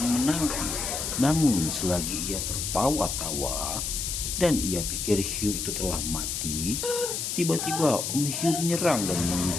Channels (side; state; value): left; noise; hiss, 2 dB below the sound